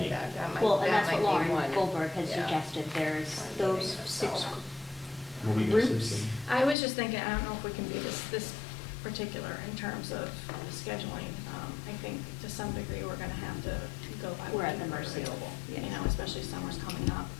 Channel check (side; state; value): right; drops out; at 6.8 s